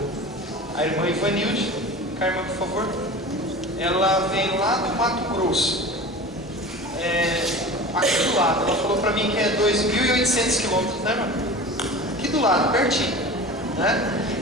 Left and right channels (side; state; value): both; normal; correlation 0.35